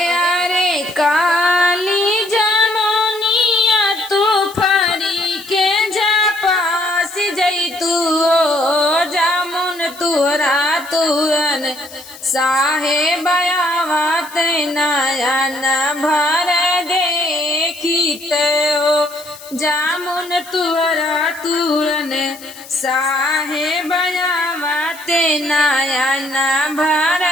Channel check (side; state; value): left; noise; hiss, 18 dB below the sound